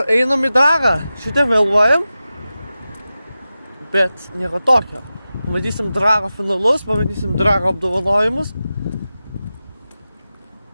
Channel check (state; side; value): inverted; both; correlation -0.94